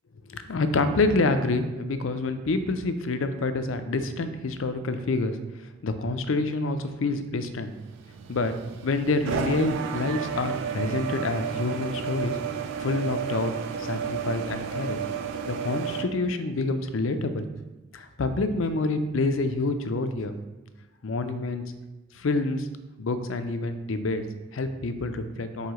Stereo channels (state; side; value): normal; both; correlation 0.28